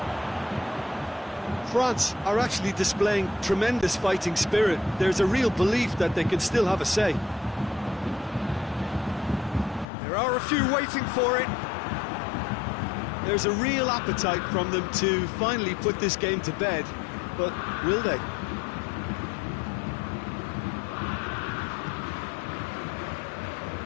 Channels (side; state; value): right; drops out; at 9.9 s